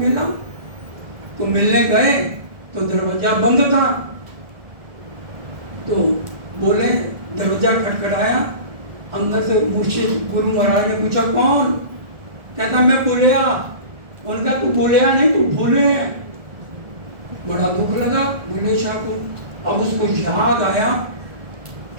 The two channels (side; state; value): left; late; 1.7 ms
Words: तो मिलने गए तो दरवाजा बंद था। तो बोले, दरवाजा खटखटाया, अंदर से मुर्शिद गुरु महाराज ने पूछा कौन? कहता मैं बुलिया। उनका तू बुलिया नहीं, तू भूले हैं। बड़ा दुख लगा बुल्ले शाह को। अब उसको याद आया